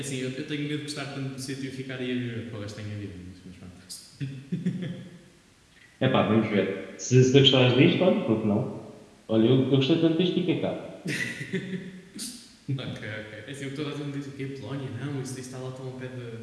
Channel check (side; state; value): both; identical; correlation 1.00